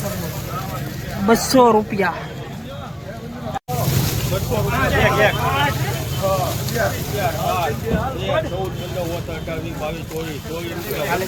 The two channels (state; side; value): identical; both; correlation 1.00